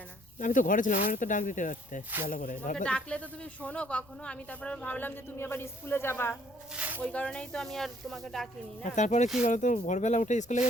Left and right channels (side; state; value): left; noise; rumble, 28 dB below the sound